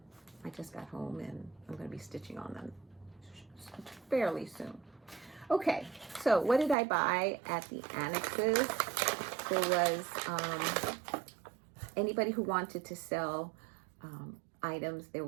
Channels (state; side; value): drops out; left; at 6.8 s